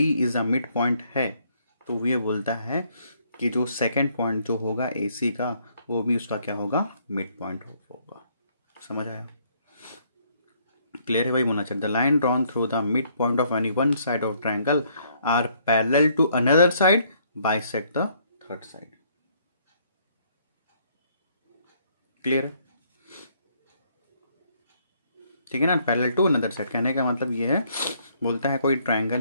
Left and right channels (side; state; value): both; inverted; correlation -0.67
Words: is the mid point है, तो ये बोलता है कि जो सेकेंड पॉइंट जो होगा ए सी का, वो भी उसका क्या होगा, मिड पॉइंट होगा। समझ आया? क्लियर है? वही होना चाहिए। The line drawn through the mid point of any one side of triangle are parallel to another side bisect the third side. Clear है? ठीक है ना, पैरेलल टू अनदर साइड कहने का मतलब ये है, बोलता है कोई